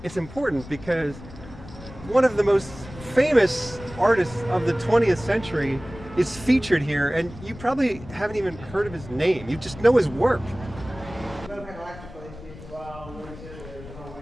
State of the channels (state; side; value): noise; left; rumble, 16 dB below the sound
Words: It's important because one of the most famous artists of the 20th century is featured here, and you probably haven't even heard of his name. You just know his work.